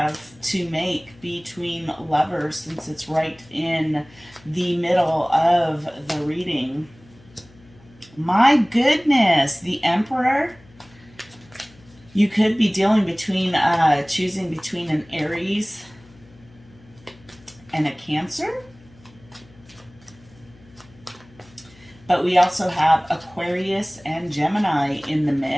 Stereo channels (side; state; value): left; noise; hum, 26 dB below the sound